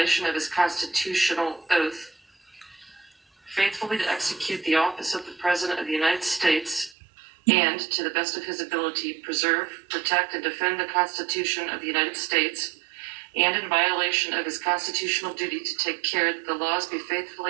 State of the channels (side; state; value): left; drops out; at 7.0 s